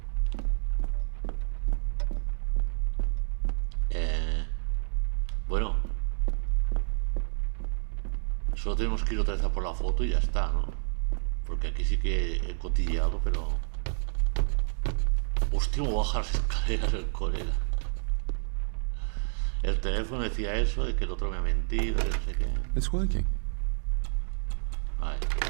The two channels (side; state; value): left; silent; digital silence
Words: Bueno, solo tenemos que ir otra vez a por la foto y ya está, ¿no? Porque aquí sí que he cotilleado, pero... Hostia, me baja las escaleras el colega. El teléfono decía eso, de que el otro me ha mentido, que no sé qué. It's working. Vale,